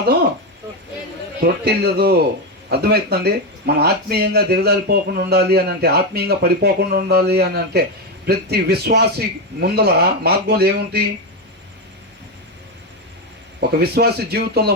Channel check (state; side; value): normal; both; correlation 0.09